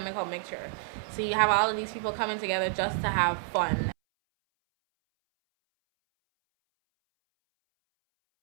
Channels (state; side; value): silent; left; 59 dB below the other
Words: mixture. So you have all of these people coming together just to have fun.